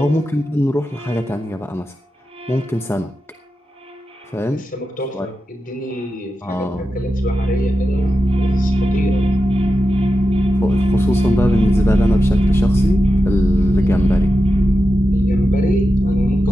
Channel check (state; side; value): normal; both; correlation 0.90